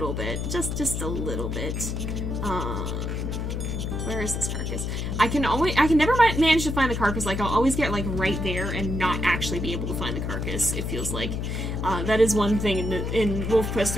bit. Just a little bit. Where is this carcass? I can never manage to find the carcass. Like, I'll always get, like, right there and not actually be able to find the carcass, it feels like. That is one thing in WolfQuest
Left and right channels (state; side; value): noise; left; hum, 2 dB below the sound